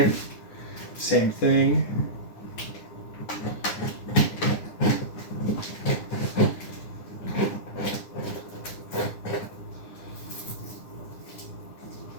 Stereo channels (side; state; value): right; late; 9.7 ms